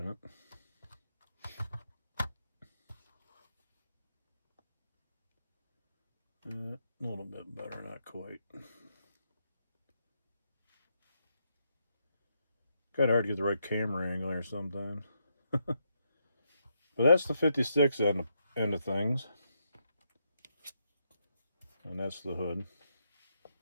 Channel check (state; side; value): inverted; both; correlation -0.80